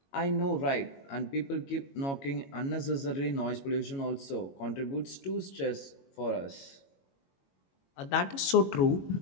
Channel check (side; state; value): right; late; 22 ms